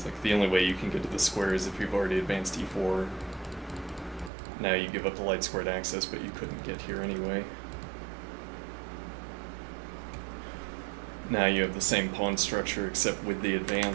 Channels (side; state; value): left; drops out; at 4.3 s